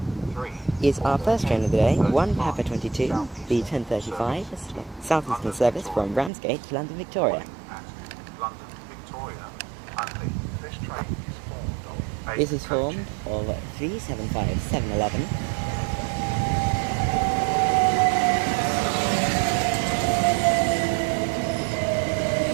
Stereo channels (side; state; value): left; drops out; at 6.3 s